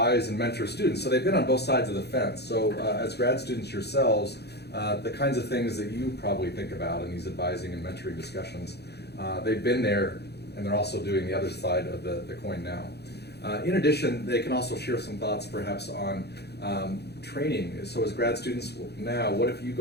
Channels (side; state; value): right; late; 0.48 ms